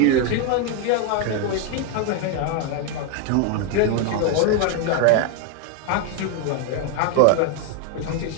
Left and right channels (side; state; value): both; different; correlation 0.01